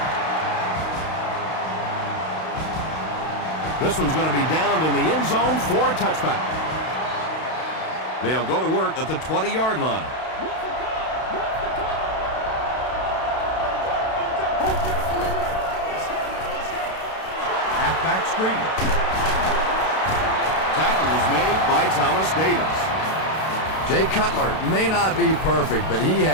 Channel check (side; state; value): right; late; 32 ms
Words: This one's going to be downed in the end zone for a touchback. They'll go to work at the 20-yard line. Halfback screen. Tackle was made by Thomas Davis. Jay Cutler may not be perfect, but he